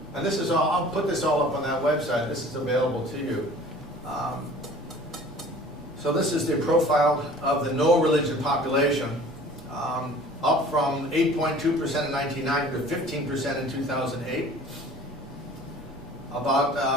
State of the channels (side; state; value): both; normal; correlation 0.47